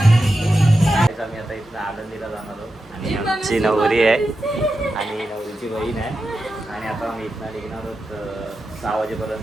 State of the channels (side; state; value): both; normal; correlation 0.90